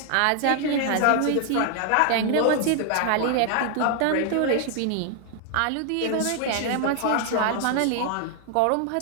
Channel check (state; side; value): different; both; correlation 0.00